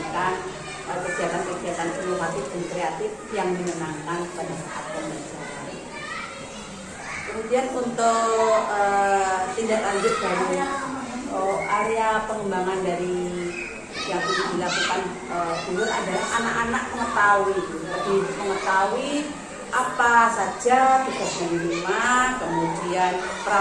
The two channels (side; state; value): both; identical; correlation 1.00